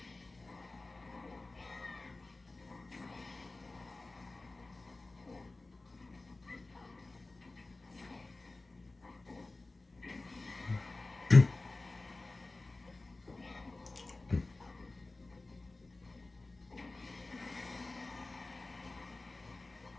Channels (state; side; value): quieter; right; 3.2 dB